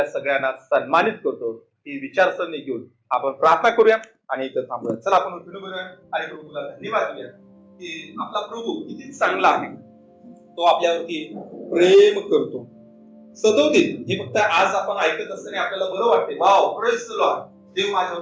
सगळ्यांना सन्मानित करतो. ही विचारसरणी घेऊन आपण प्रार्थना करूया आणि इथं थांबूया. चला आपण उठून बघूया आणि प्रभूला धन्यवाद देऊया की आपला प्रभू किती चांगला आहे. तो आपल्यावरती प्रेम करतो. सदोदित हे फक्त आज आपण ऐकत असताना आपल्याला बरं वाटते, वाव प्रेज द लॉर्ड, देव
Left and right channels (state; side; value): identical; both; correlation 1.00